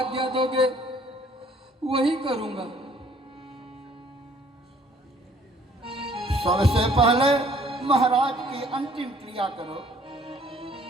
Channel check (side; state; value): both; normal; correlation 0.59